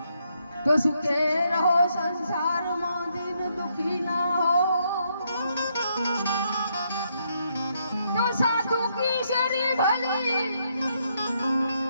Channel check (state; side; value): inverted; both; correlation -0.76